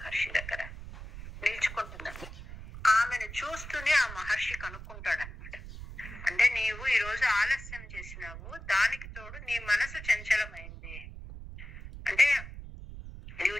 దగ్గర నిల్చుకుంటుందండి. ఆమెను చూస్తూనే ఆ మహర్షి కనుక్కుంటాడనమాట. అంటే నీవు ఈ రోజు ఆలస్యం చేసినావు, దానికి తోడు నీ మనసు చంచలమైంది. అంటే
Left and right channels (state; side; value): noise; right; rumble, 12 dB below the sound